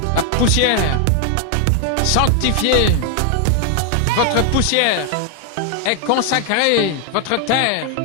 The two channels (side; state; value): both; different; correlation 0.00